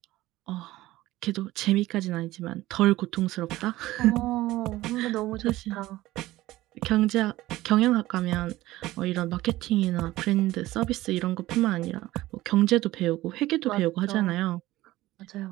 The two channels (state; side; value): quieter; left; 16.9 dB